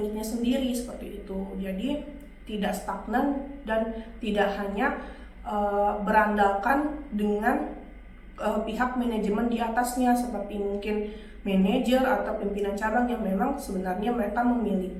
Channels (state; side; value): identical; both; correlation 1.00